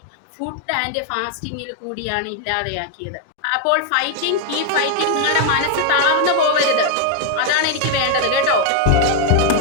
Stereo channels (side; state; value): both; different; correlation 0.00